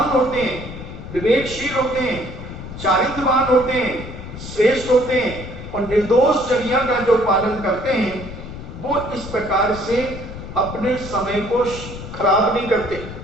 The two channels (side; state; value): left; noise; rumble, 11 dB below the sound